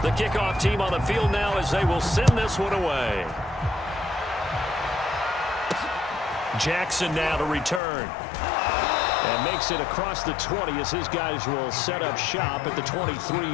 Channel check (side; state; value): right; drops out; at 7.8 s